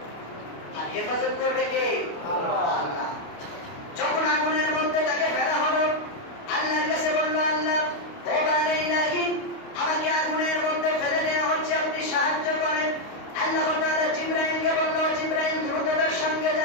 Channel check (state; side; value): late; right; 29 ms